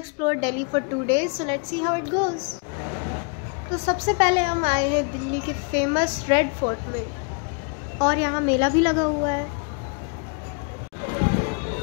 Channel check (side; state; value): right; quieter; 37.9 dB